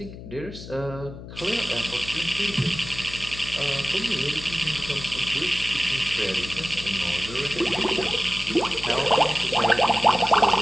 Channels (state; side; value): noise; left; hum, 13 dB below the sound